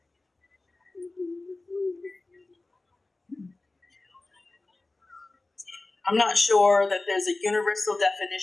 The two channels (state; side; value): quieter; right; 3.1 dB